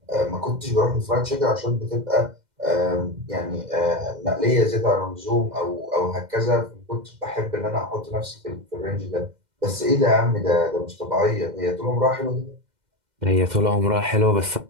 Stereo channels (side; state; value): left; late; 2.1 ms